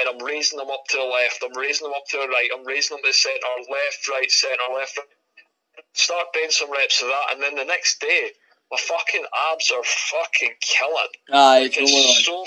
I'm raising them up to the left, I'm raising them up to the right, I'm raising them to the centre, left, right, centre, left, right. Start doing some reps of that, and then the next day, my fucking abs are fucking killing. Aye, like, it's so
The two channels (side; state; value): both; identical; correlation 1.00